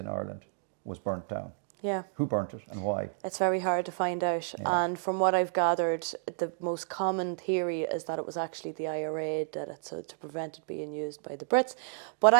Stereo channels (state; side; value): silent; left; digital silence